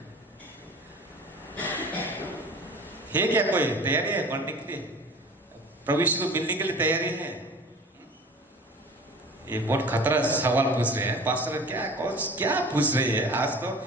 है क्या कोई तैयारी है मरने के लिए, प्रभु यीशु को मिलने के लिए तैयारी है? ये बहुत खतरा सवाल पूछ रहे हैं पास्टर, क्या पूछ रहे हैं, आज तो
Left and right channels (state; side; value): normal; both; correlation 0.41